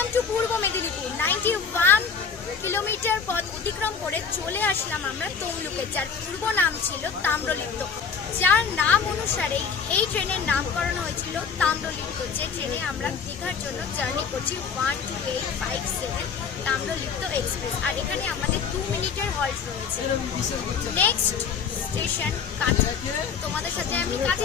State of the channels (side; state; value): right; quieter; 6.2 dB